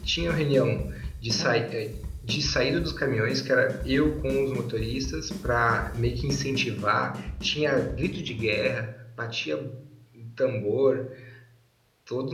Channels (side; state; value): both; identical; correlation 1.00